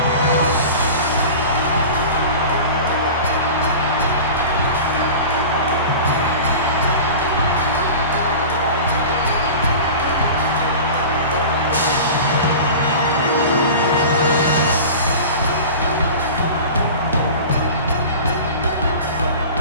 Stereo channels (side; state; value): both; inverted; correlation -0.35